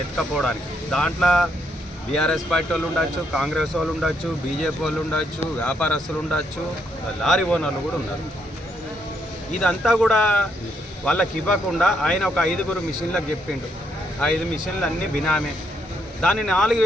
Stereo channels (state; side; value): normal; both; correlation 0.75